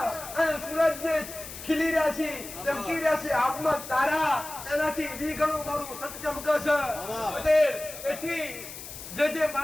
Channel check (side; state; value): left; noise; hiss, 12 dB below the sound